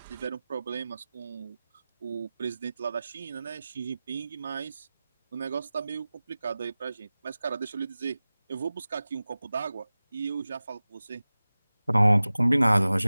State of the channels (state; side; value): inverted; both; correlation -0.97